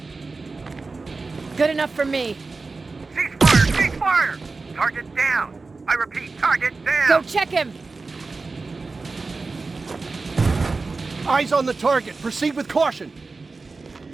Good enough for me. Ceasefire! Ceasefire! Target down! I repeat, target down! Go check him! Eyes on the target. Proceed with caution.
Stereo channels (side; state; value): left; quieter; 3.9 dB